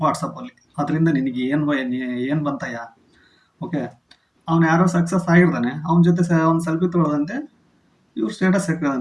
ವಾಟ್ಸಪ್ಪಲ್ಲಿ. ಅದರಿಂದ ನಿನಗೆ ಏನು ಬಂತಯ್ಯ? ಓಕೆ, ಅವ್ನು ಯಾರೋ ಸಕ್ಸಸ್ ಆಗಿರ್ತಾನೆ, ಅವನ ಜೊತೆ ಒಂದು ಸೆಲ್ಫಿ ತೊಗೊಳ್ಳೋದಂತೆ, ಇವ್ರು ಸ್ಟೇಟಸ್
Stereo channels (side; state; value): both; identical; correlation 1.00